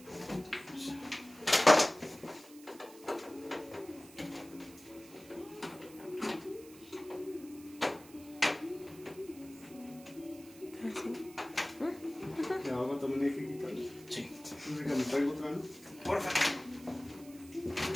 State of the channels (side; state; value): right; noise; hiss, 21 dB below the sound